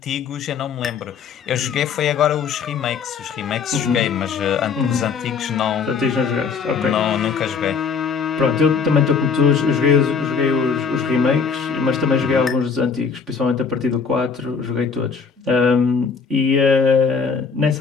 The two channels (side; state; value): right; quieter; 5.7 dB